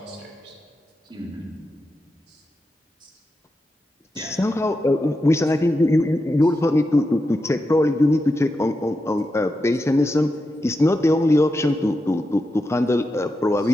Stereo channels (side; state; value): both; normal; correlation 0.88